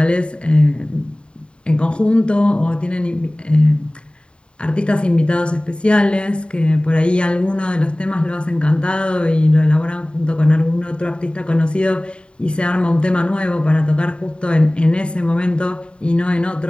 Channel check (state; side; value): late; right; 0.053 ms